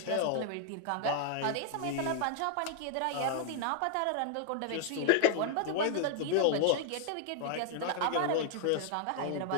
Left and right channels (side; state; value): both; different; correlation 0.00